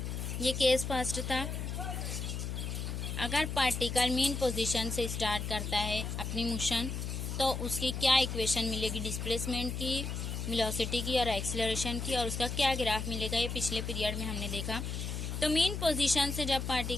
ये केस फर्स्ट था। अगर पार्टिकल मीन पोजीशन से स्टार्ट करता है अपनी मोशन तो उसकी क्या इक्वेशन मिलेगी डिस्प्लेसमेंट की, वेलोसिटी की और एक्सेलरेशन की, और उसका क्या ग्राफ मिलेगा, ये पिछले पीरियड में हमने देखा। तो मीन पोजीशन से जब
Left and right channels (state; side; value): noise; left; hum, 4 dB below the sound